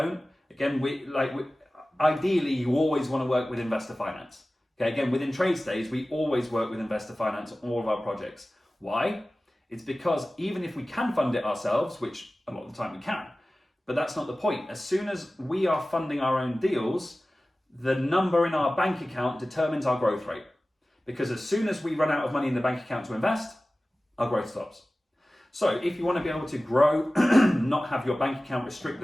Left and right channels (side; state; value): both; normal; correlation 0.97